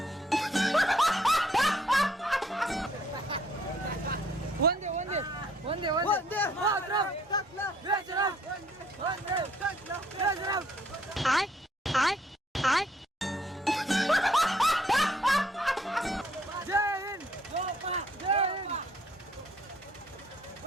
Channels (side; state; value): both; normal; correlation 0.64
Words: वंदे वंदे वंदे वंदे मातरम.